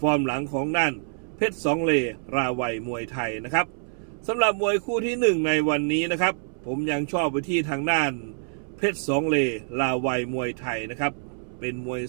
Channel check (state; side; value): silent; left; 61 dB below the other